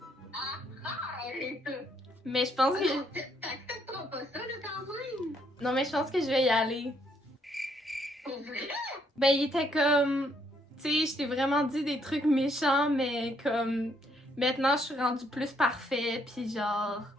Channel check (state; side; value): normal; both; correlation 0.70